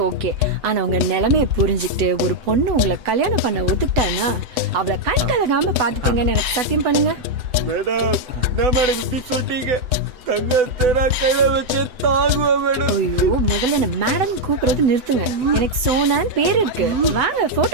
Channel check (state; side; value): late; left; 8.0 ms